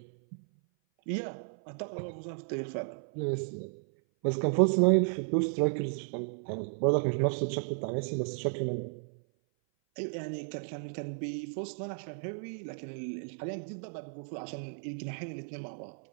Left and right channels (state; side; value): silent; left; 56 dB below the other